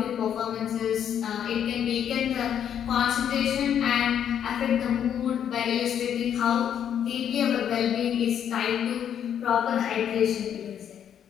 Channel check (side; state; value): right; quieter; 9.1 dB